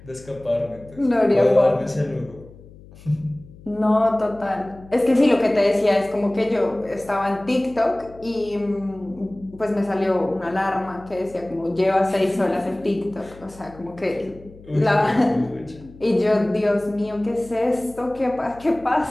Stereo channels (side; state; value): left; noise; hum, 21 dB below the sound